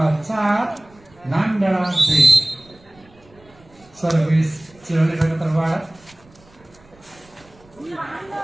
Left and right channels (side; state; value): right; noise; rumble, 28 dB below the sound